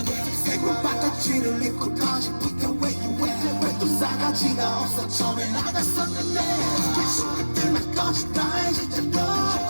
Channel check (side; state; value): both; inverted; correlation -1.00